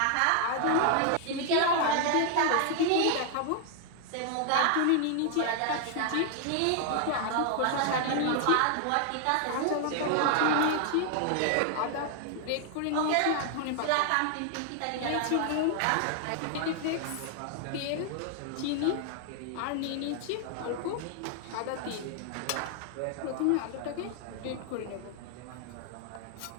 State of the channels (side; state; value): both; different; correlation 0.00